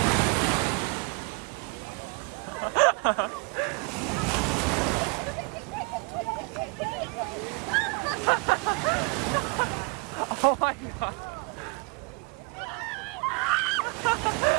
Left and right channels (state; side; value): quieter; left; 31.0 dB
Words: Oh my god.